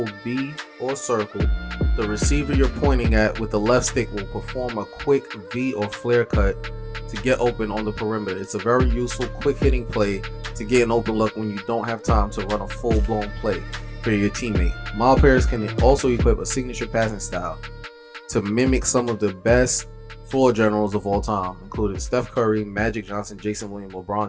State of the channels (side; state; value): both; identical; correlation 1.00